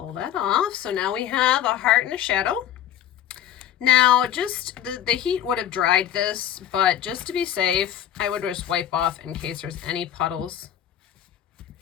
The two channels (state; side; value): quieter; right; 10.8 dB